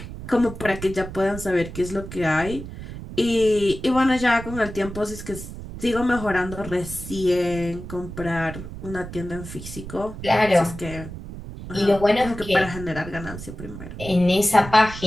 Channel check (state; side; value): noise; right; rumble, 11 dB below the sound